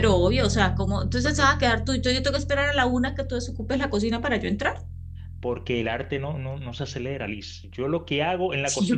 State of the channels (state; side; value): identical; both; correlation 1.00